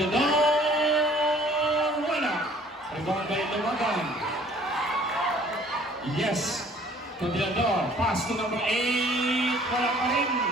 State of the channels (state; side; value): normal; both; correlation 0.55